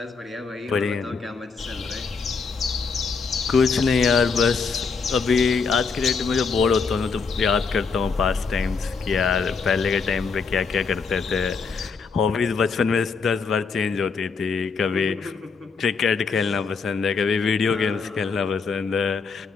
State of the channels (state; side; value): quieter; right; 5.1 dB